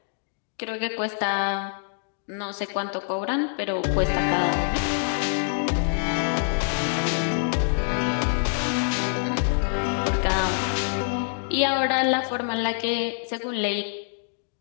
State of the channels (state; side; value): silent; right; digital silence